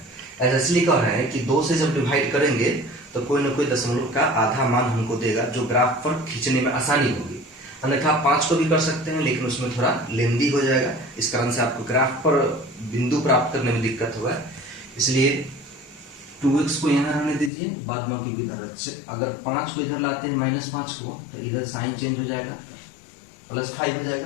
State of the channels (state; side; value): drops out; right; at 17.5 s